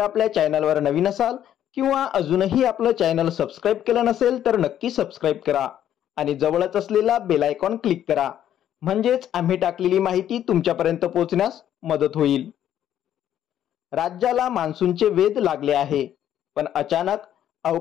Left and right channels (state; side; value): quieter; right; 10.8 dB